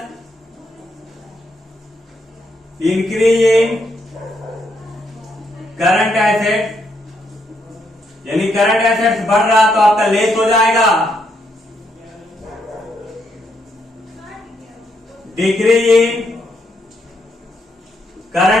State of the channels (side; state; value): both; normal; correlation 0.76